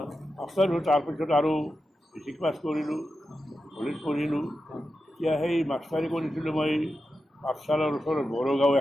মাষ্টাৰ হ'ল। তাৰপিছত আৰু মেট্ৰিক পাছ কৰিলোঁ, কলেজ পঢ়িলোঁ। এতিয়া সেই মাষ্টাৰী কৰিছিলোঁ মই পাঠশালাৰ ওচৰত বড়োগাঁও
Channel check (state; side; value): normal; both; correlation 0.90